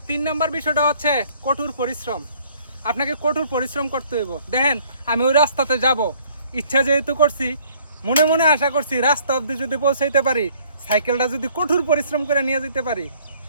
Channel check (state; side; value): inverted; both; correlation -0.60